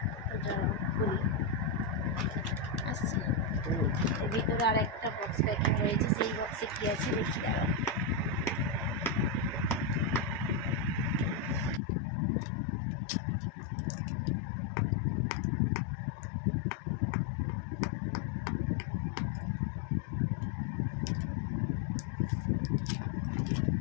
তো চলো খুলি, আসছে এর ভিতরে আর একটা বক্স প্যাকিং রয়েছে। সেই বক্সে কী আছে দেখি, দাঁড়াও।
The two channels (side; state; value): right; drops out; at 11.8 s